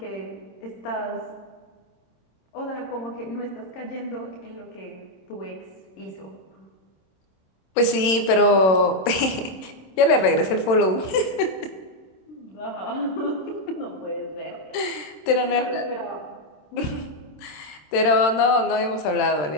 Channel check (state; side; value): late; right; 27 ms